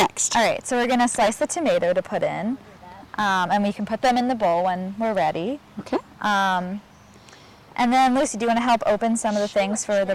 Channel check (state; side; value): identical; both; correlation 1.00